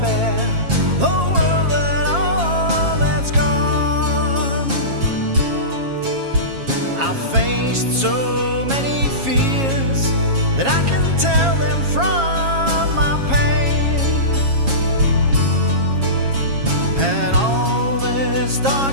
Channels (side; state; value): left; late; 7.4 ms